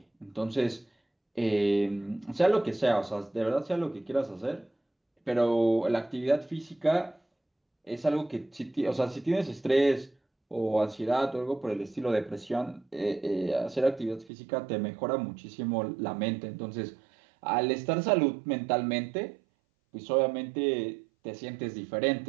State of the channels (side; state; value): left; drops out; at 14.3 s